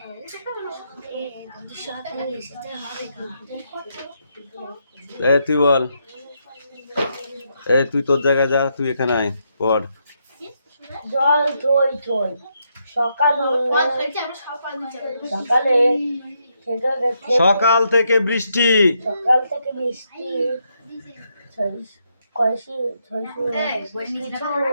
তুই বল, তুই তোর জায়গায় যা, তুই এখানে আয় পড়। জল থই থই সকালে সকাল থেকে বৃষ্টি কয়সি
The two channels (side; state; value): both; inverted; correlation -0.79